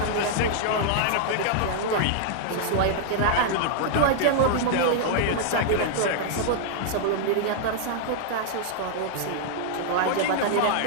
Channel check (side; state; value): both; different; correlation -0.01